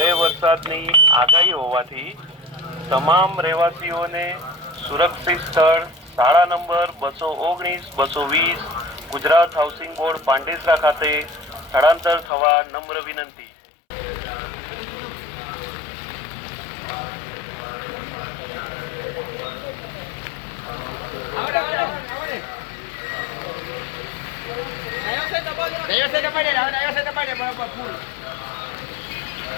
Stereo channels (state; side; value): drops out; right; at 12.3 s